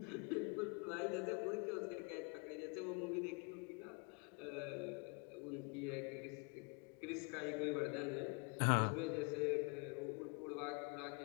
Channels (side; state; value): right; quieter; 33.9 dB